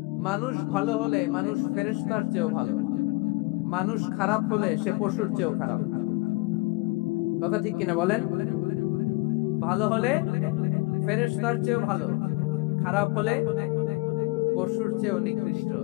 মানুষ ভালো হলে মানুষ ফেরেশতার চেয়েও ভালো, মানুষ খারাপ হলে সে পশুর চেয়েও খারাপ। কথা ঠিক কিনা বলেন? ভালো হলে ফেরেশতার চেয়েও ভালো, খারাপ হলে পশুর চেয়েও নিকৃষ্ট।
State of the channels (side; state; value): right; quieter; 24.9 dB